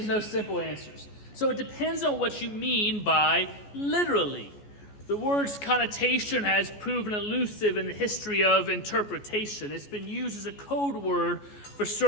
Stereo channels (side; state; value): right; late; 14 ms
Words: no simple answers. So it depends on what you mean by literally. The word's connotation has proven elusive in the history of interpretation. It's been used as a code word for